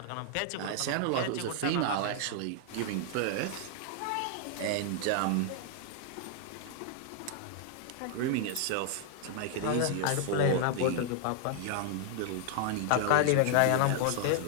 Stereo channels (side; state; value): both; different; correlation 0.00